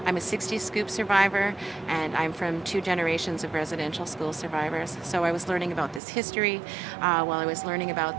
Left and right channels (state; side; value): drops out; left; at 6.0 s